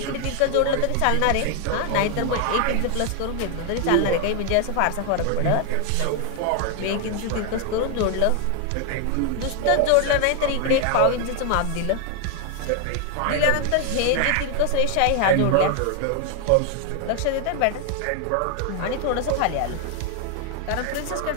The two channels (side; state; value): both; different; correlation 0.00